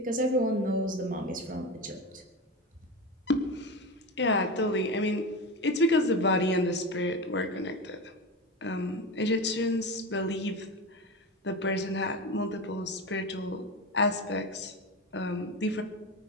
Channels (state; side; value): normal; both; correlation 0.23